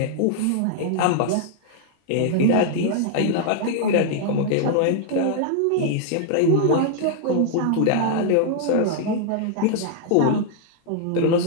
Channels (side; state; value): both; different; correlation -0.01